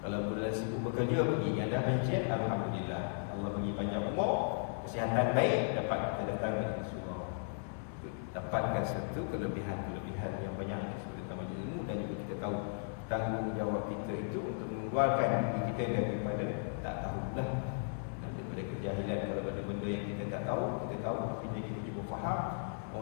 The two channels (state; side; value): silent; right; 54 dB below the other